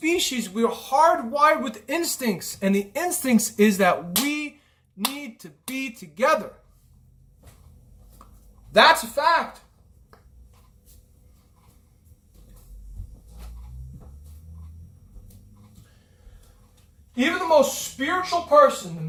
we're hardwired with instincts. And the instincts is that we need to be together. That's a fact. Even the most spiritual person, the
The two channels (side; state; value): both; identical; correlation 1.00